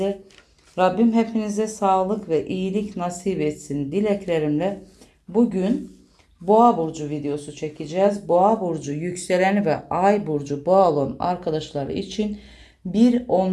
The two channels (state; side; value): identical; both; correlation 1.00